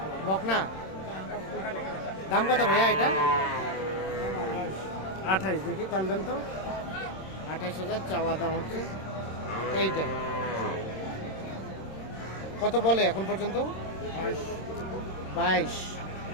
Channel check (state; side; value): late; right; 26 ms